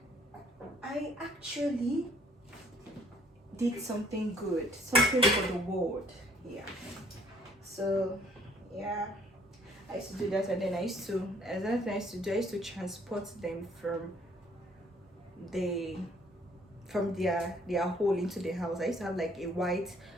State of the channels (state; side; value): normal; both; correlation 0.61